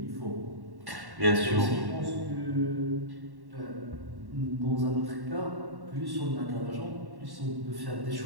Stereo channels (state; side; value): late; left; 1.1 ms